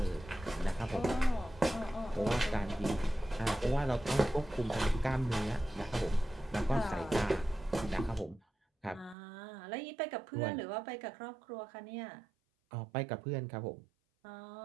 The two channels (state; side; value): drops out; left; at 9.2 s